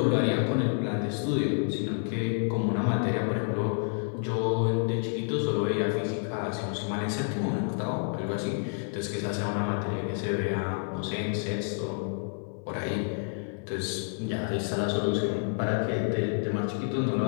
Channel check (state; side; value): silent; right; 59 dB below the other